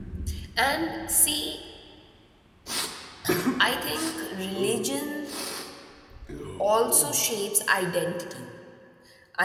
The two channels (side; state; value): both; identical; correlation 1.00